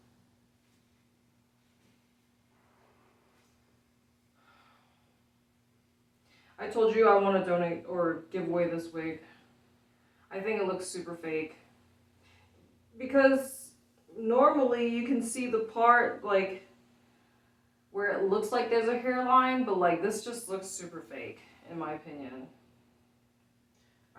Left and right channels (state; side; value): identical; both; correlation 1.00